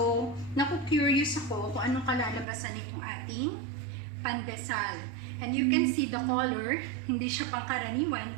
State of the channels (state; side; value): drops out; left; at 2.5 s